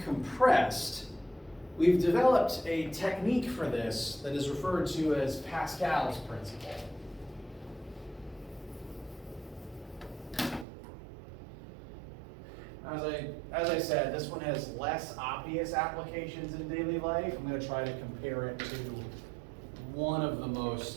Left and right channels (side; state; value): left; drops out; at 10.7 s